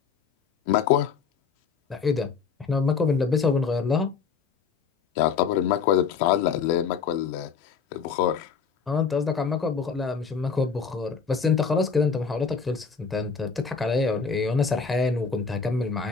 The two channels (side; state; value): right; quieter; 5.8 dB